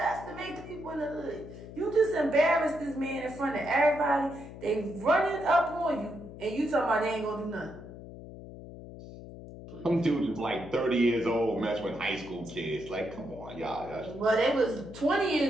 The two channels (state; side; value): noise; left; hum, 14 dB below the sound